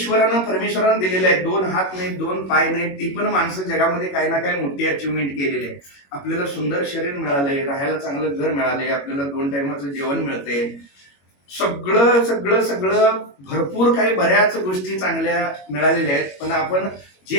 परमेश्वरानं दिलेलं आहे. 2 हात नाहीत, 2 पाय नाहीत, ती पण माणसं जगामध्ये काही ना काही मोठी अचिव्हमेंट केलेली आहे. आपल्याला सुंदर शरीर मिळालंय, राहायला चांगलं घर मिळालंय, आपल्याला 2 टायमाचं जेवण मिळते, सगळं सगळं सगळं भरपूर काही बऱ्याच गोष्टी चांगल्या मिळालेल्या आहेत. पण आपण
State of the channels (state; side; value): late; right; 21 ms